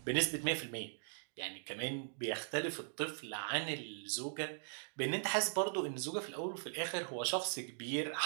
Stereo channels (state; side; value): silent; left; digital silence